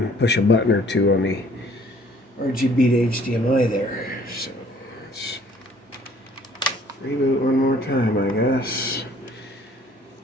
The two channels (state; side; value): normal; both; correlation 0.57